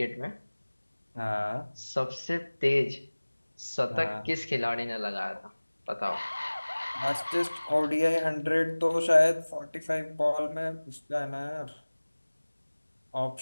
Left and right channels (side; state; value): both; inverted; correlation -1.00